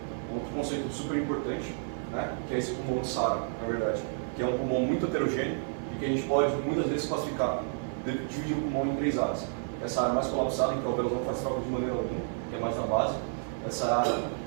outro conceito super importante, né, que é esse pulmão de SARA, na verdade, que é um pulmão muito heterogêneo e que a gente pode muitas vezes classificar, dividir o pulmão em 3 áreas. Essa área mais colapsada, em que o alvéolo não faz troca de maneira alguma, que é mais na base. Essa área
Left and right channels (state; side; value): silent; left; 57 dB below the other